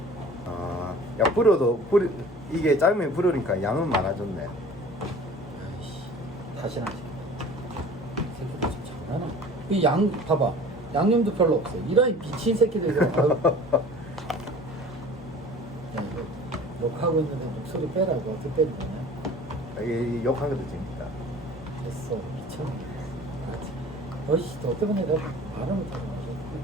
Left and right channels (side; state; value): both; normal; correlation 0.44